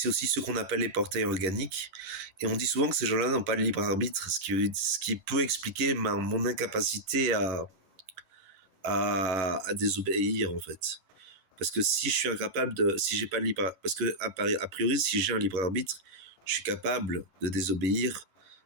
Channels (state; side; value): late; left; 11 ms